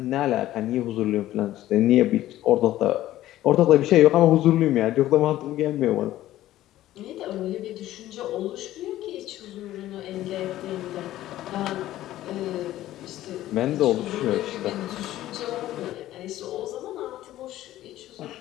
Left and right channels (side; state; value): right; quieter; 14.3 dB